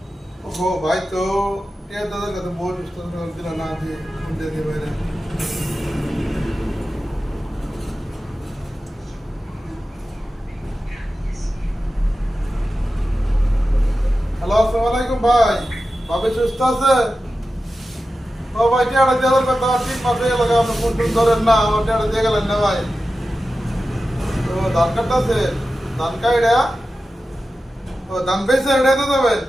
ও ভাই তো টিয়া দাদার কাছে বহুত ইস্টা দিল না, যে ফোন দিয়ে দিয়ে বাইরে। হ্যালো, আসসালামু আলাইকুম ভাই। ভাবি সুস্থ আছে? ও ভাই টিয়াটা দেওয়ার কথা, ঠিক মাসে গেল, আপনি ফোন টোন ধরেন না, আমার টিয়াটা দিয়ে গেলেন না ভাই। তো ধান কাটতে আছে, ধান কাইডা, ও ধান বেচে এটা তো দেবেন।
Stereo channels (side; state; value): both; normal; correlation 0.93